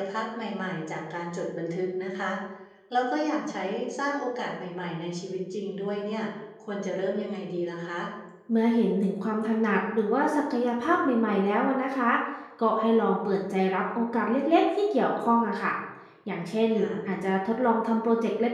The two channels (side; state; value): both; identical; correlation 1.00